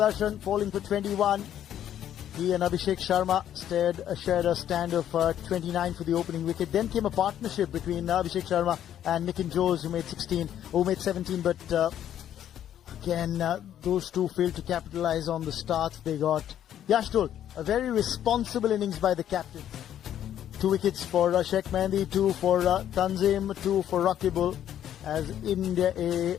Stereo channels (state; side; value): quieter; right; 10.7 dB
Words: falling for 21. He and Abhishek Sharma shared a stand of 29 for the opening wicket. Then came a partnership between Abhishek Sharma and Nitin Jose, who made 17. But again, those two failed to capitalize on the start they got. Yash Dole, a very responsible innings by the captain. 2 wickets for Sheikh Mehndi, 2 for Tanzim, 2 for Rakibul, as India A